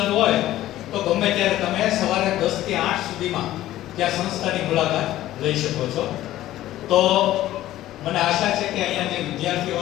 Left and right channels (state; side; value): quieter; right; 14.4 dB